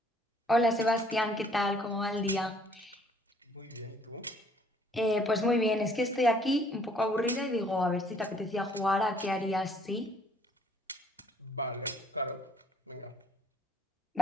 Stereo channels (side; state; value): both; normal; correlation 0.61